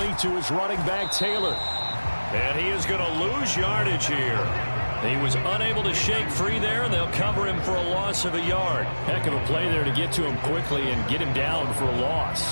to his running back, Taylor. And he is going to lose yardage here. He was unable to shake free there, and they'll cover him for a loss of a yard. Heck of a play there to get to him quickly and get him down for a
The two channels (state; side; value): inverted; both; correlation -1.00